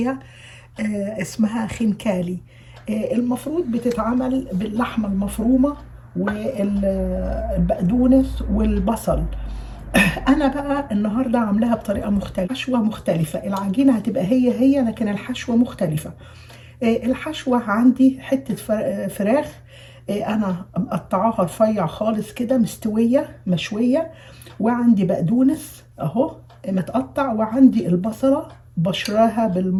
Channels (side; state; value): both; identical; correlation 1.00